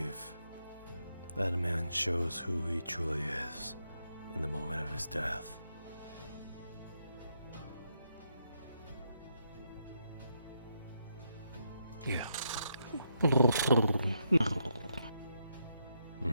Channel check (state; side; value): inverted; both; correlation -0.80